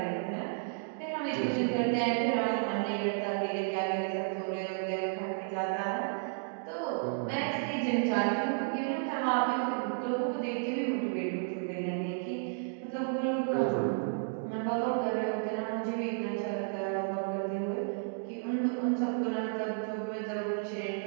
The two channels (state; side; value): silent; left; digital silence